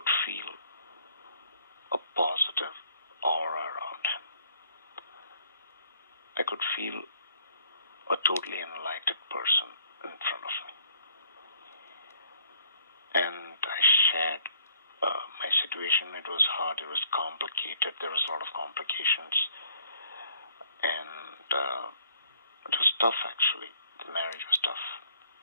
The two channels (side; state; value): both; inverted; correlation -0.65